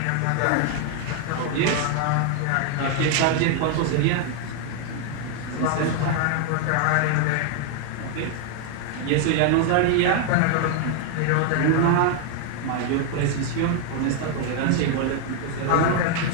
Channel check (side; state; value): both; different; correlation 0.00